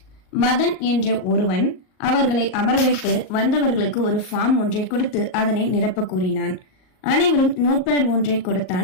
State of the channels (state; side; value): late; right; 38 ms